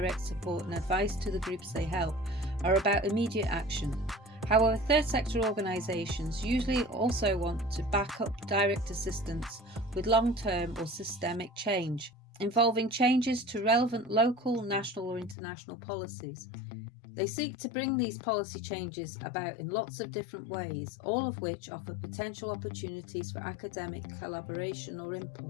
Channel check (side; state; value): right; drops out; at 15.4 s